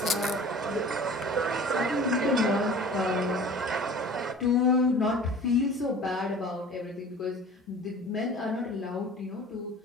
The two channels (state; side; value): normal; both; correlation 0.43